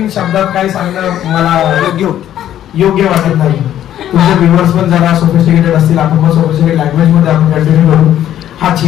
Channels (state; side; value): quieter; right; 11.5 dB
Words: शब्दात काय सांगणं मला योग्य वाटत नाही. तुमचे व्ह्युअर्स पण जरा सोफिस्टिकेटेड असतील, आपण पण सोफिस्टिकेटेड लँग्वेज मध्ये आपण कंटिन्यू करू. हा